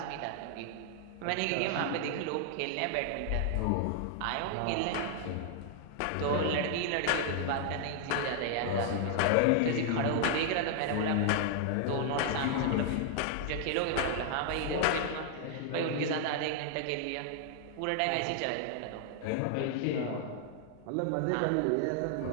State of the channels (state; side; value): different; both; correlation 0.00